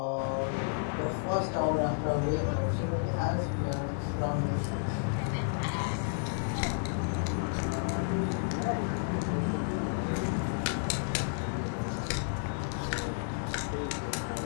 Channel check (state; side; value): silent; right; digital silence